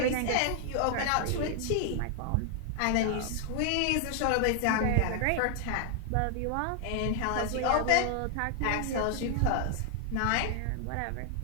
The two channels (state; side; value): different; both; correlation 0.00